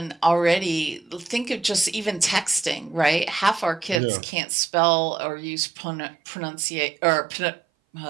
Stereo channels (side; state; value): left; drops out; at 4.0 s